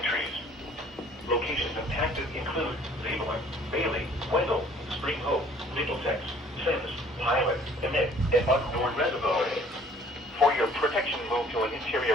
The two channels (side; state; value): both; normal; correlation 0.55